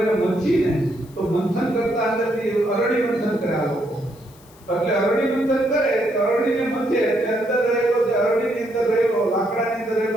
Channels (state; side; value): noise; left; hiss, 27 dB below the sound